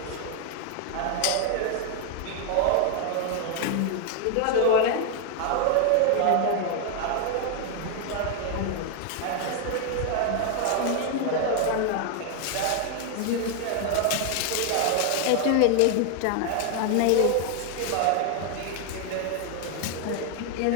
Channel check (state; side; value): different; both; correlation 0.00